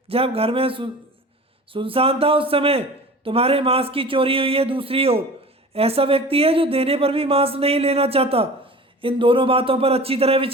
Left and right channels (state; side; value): normal; both; correlation 0.39